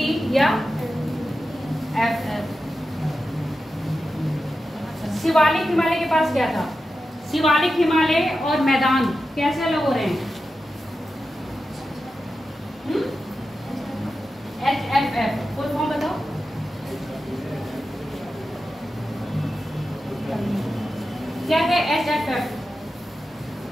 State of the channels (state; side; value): normal; both; correlation 0.91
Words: या F। शिवालिक हिमालय के पास क्या था? शिवालिक हिमालय और मैदान कैसे अलग हो रहे हैं? HFF फुल फॉर्म बताओ। क्या है HFF?